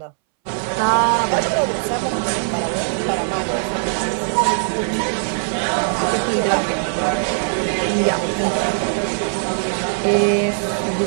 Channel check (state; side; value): silent; left; 66 dB below the other